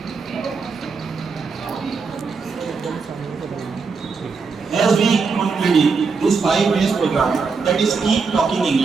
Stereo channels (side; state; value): left; quieter; 4.8 dB